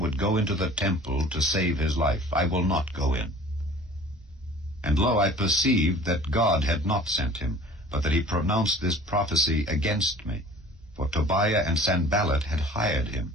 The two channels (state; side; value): normal; both; correlation 0.46